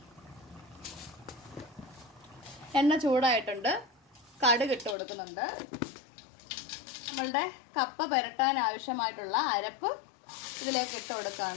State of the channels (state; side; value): drops out; right; at 5.0 s